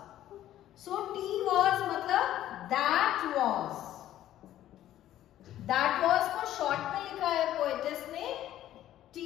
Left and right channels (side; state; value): right; quieter; 12.8 dB